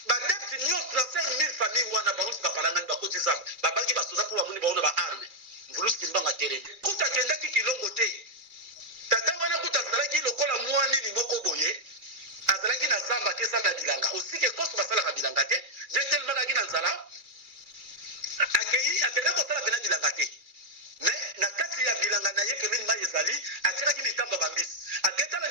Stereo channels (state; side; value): late; left; 2.4 ms